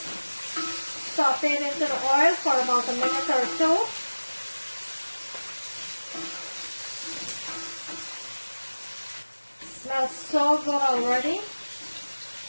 saute into the oil for about a minute or so. Smells so good already.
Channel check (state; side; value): inverted; both; correlation -1.00